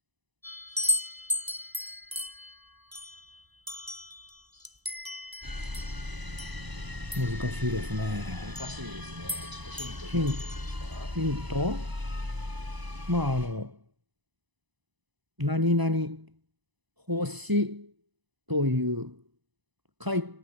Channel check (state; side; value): late; left; 1.0 ms